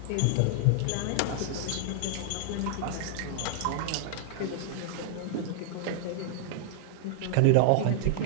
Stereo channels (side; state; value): both; different; correlation -0.01